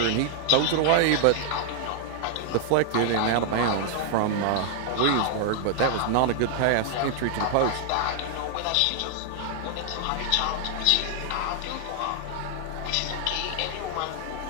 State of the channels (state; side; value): different; both; correlation 0.00